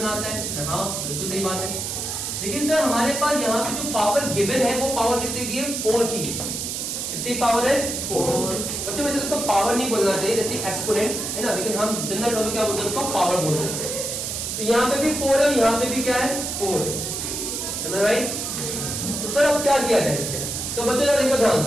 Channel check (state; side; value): noise; right; hiss, 3 dB below the sound